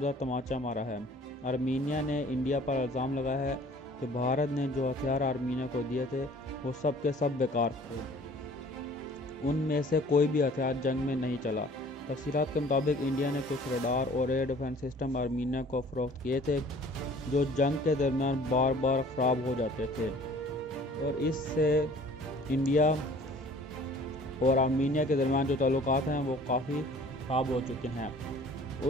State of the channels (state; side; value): normal; both; correlation 0.51